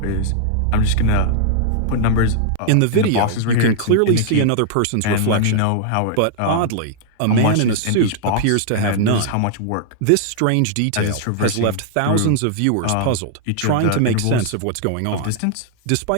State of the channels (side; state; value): both; different; correlation -0.01